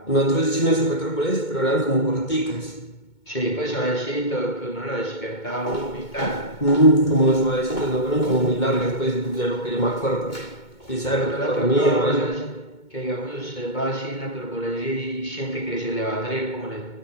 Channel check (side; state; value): right; late; 2.2 ms